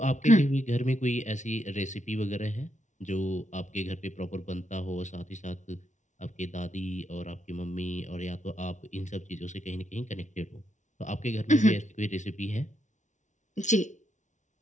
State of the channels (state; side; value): late; right; 0.36 ms